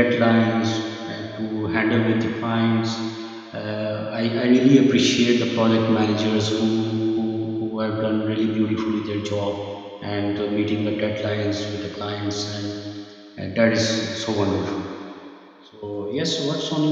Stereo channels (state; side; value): identical; both; correlation 1.00